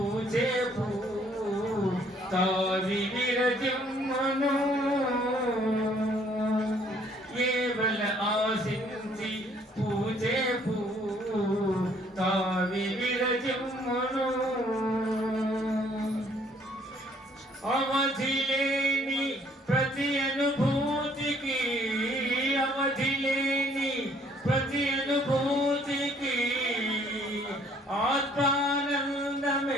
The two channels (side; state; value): both; normal; correlation 0.62